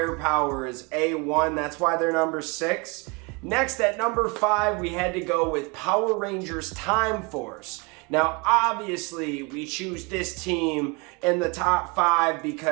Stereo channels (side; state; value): left; quieter; 29.2 dB